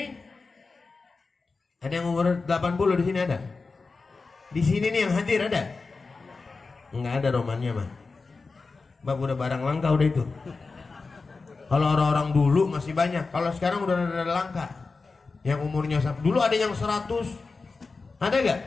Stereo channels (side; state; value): right; quieter; 4.1 dB